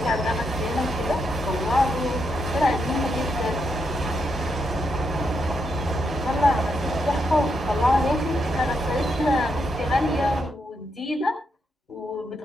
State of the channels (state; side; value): normal; both; correlation 0.81